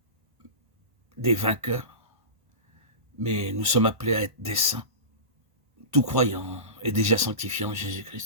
des vainqueurs, mais nous sommes appelés à être des saints. Tout croyant est déjà sanctifié en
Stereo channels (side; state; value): left; late; 1.5 ms